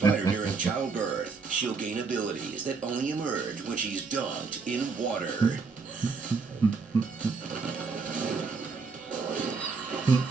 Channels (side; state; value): left; quieter; 4.7 dB